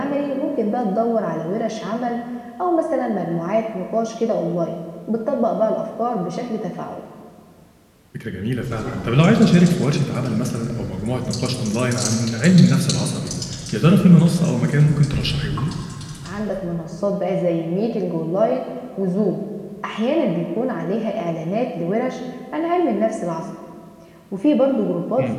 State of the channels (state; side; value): identical; both; correlation 1.00